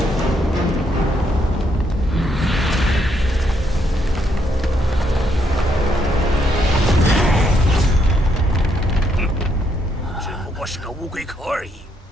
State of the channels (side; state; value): both; normal; correlation 0.75